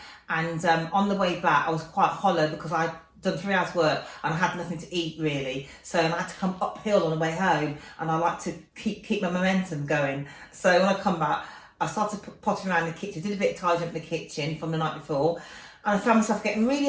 and on the way back I was quite hollow because I'd done 3 hours work and I had nothing to eat really, so I had to come uphill on the way home, and I like to keep my momentum going. So when I come back, I started potting around the kitchen, did a bit of tidying up in the kitchen from the night before, and I found myself getting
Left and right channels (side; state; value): both; identical; correlation 1.00